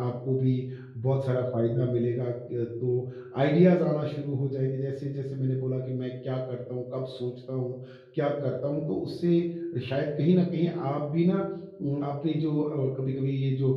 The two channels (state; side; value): identical; both; correlation 1.00